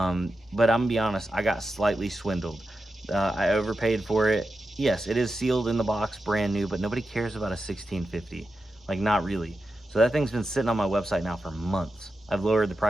gonna be honest, I got slightly swindled. I overpaid for it. Yes, it is sealed in the box, brand new, but nobody cares about a 1650. Like, not really. So that thing's been sitting on my website now for months. I've lowered the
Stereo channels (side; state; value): both; normal; correlation 0.90